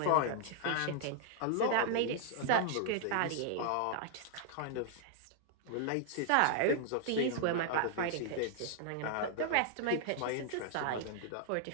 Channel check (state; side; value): different; both; correlation -0.01